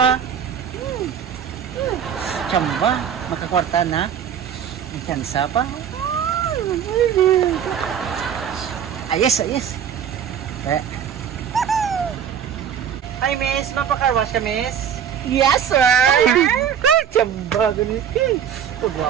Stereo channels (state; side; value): quieter; left; 8.5 dB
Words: Tsamba, makakwarta na. May tsansa pa. Ayos. Hi, miss. Mapa-car wash ka, miss? Yes, sir. Tsamba, ganit.